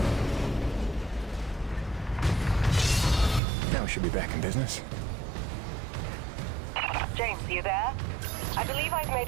Should be back in business. James, are you there? I believe I've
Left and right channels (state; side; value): drops out; left; at 3.4 s